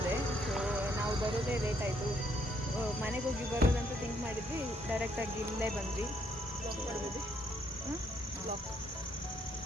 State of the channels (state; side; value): normal; both; correlation 0.71